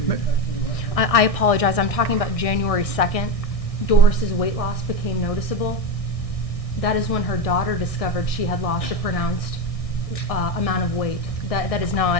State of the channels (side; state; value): right; late; 1.6 ms